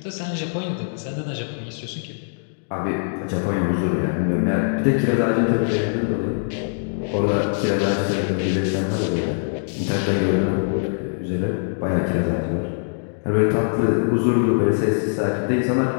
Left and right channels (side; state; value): right; silent; digital silence